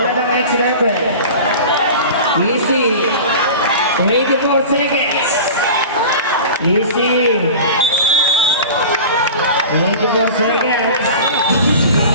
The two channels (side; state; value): both; inverted; correlation -0.35